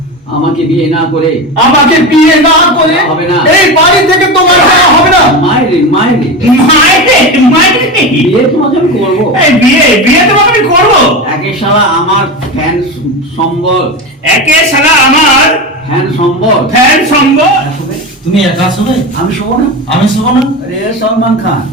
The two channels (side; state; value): both; normal; correlation 0.22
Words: বিয়ে না করে আমাকে বিয়ে না করে হবে না। এই বাড়ি থেকে তোমার যাওয়া হবে না। মায়েরে মায়েরে মাইরে বিয়ে তোমাকে আমি করবো। বিয়ে তোমাকে আমি করবো। একে শালা আমার ফ্যান সম্বল, একে শালা আমার ফ্যান সম্বল। ফ্যান সঙ্গ। তুমি একা শোবে, আমি শোবো না। আমি শোবো না। अरे सलमान खान